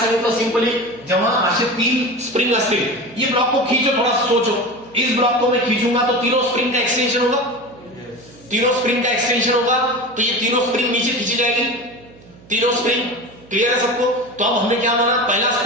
सांगितलं सिंपली, जेव्हा असे 3 स्प्रिंग असतील, ये ब्लॉक को खींचो, थोड़ा सोचो, इस ब्लॉक को मैं खींचूंगा तो तीनों स्प्रिंग का एक्सटेंशन होगा, तीनों स्प्रिंग का एक्सटेंशन होगा, तो ये तीनों स्प्रिंग नीचे खींची जाएगी, तीनों स्प्रिंग। क्लियर है सबको? तो अब हमने क्या माना? पहला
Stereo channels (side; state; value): right; noise; hum, 24 dB below the sound